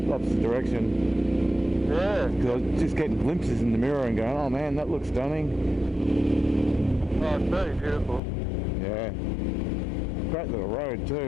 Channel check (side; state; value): right; drops out; at 8.2 s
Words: direction. Yeah. Because I was just getting glimpses in the mirror and going, oh man, that looks stunning. Oh, it's very beautiful. Yeah. Great little road